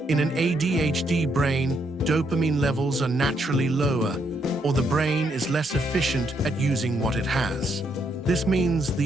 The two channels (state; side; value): normal; both; correlation 0.75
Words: In an ADHD brain, dopamine levels are naturally lower, or the brain is less efficient at using what it has. This means